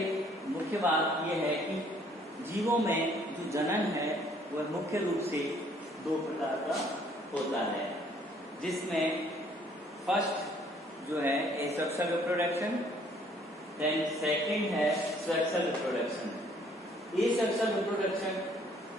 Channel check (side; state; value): both; normal; correlation 0.61